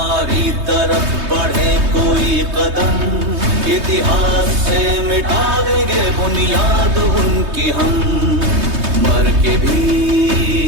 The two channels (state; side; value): late; left; 3.2 ms